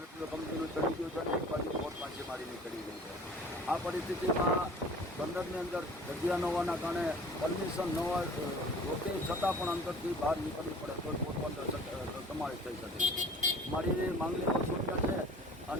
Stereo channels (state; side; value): normal; both; correlation 0.47